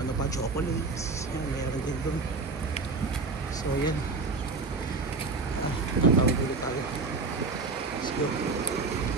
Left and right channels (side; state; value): left; quieter; 4.0 dB